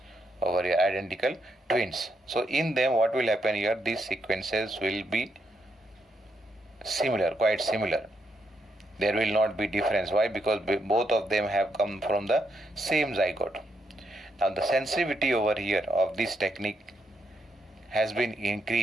over here, identical twins. So in them what will happen here? These sequences will be similar, quite similar. There will not be difference. Why? Because both of them have come from the same zygote. Now the sensitivity over here of this technique has been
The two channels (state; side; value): normal; both; correlation 0.79